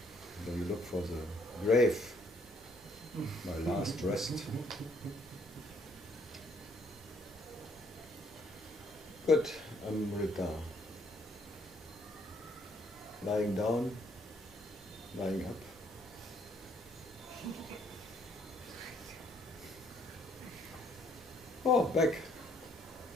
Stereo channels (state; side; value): normal; both; correlation 0.67